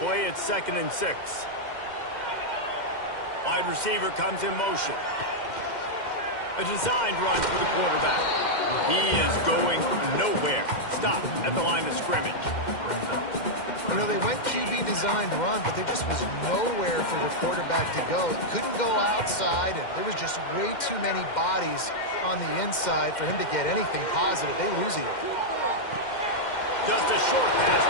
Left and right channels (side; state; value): right; late; 2.1 ms